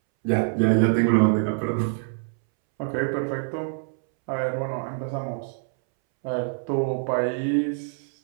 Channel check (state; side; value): silent; left; 62 dB below the other